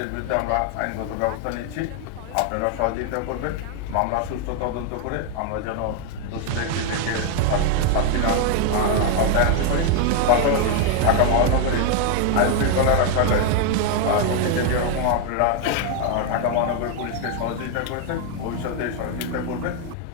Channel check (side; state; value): both; different; correlation 0.01